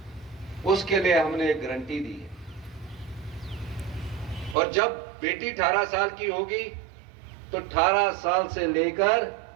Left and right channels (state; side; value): drops out; left; at 4.5 s